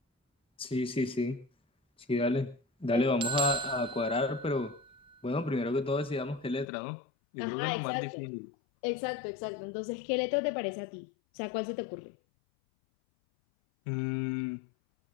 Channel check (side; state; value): right; drops out; at 6.7 s